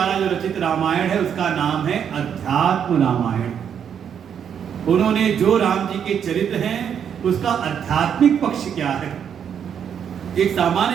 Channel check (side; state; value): left; quieter; 8.2 dB